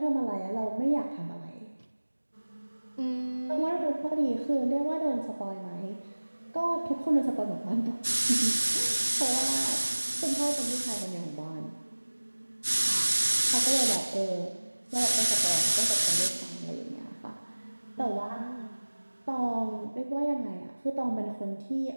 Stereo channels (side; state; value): both; inverted; correlation -1.00